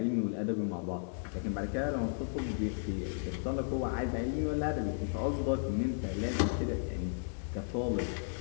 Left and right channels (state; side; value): silent; right; 55 dB below the other